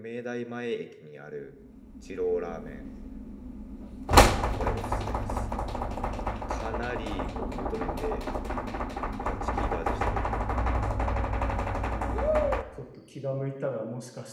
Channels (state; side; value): identical; both; correlation 1.00